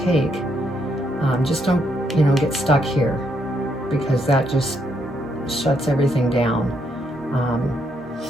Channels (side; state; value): both; normal; correlation 0.75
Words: take. Just don't, you know, get stuck here, because that just shuts everything down.